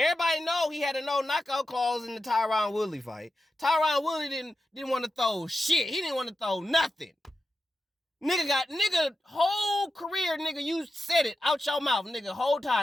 know he had a no knockout clause in the Tyron Woodley fight. Tyron Woodley didn't want to throw shit. He didn't want to throw nothing. Nigga whole career, nigga, you said it out your mouth, nigga, whole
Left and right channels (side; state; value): both; normal; correlation 0.90